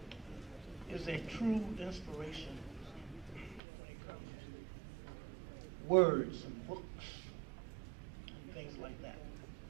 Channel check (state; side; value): drops out; left; at 3.6 s